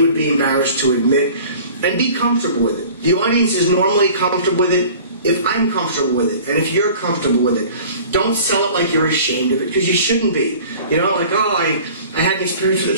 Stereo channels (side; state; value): both; inverted; correlation -0.45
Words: be embarrassed to admit, and be comfortable with it. The audience is normally comfortable with it if I'm comfortable with it, and if you're comfortable with it. Don't sell it like you're ashamed of it, because you shouldn't be. You know, like, oh, I had an experience with